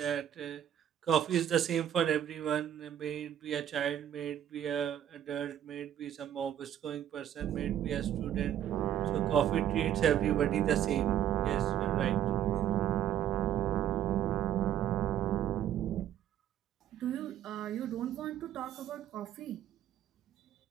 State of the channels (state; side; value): quieter; left; 10.6 dB